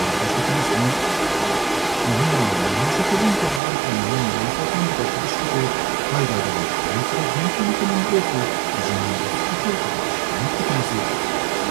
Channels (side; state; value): left; drops out; at 3.6 s